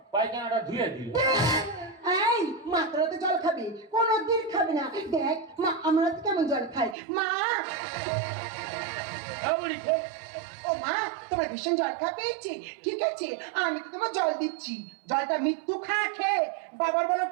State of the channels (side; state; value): left; drops out; at 7.0 s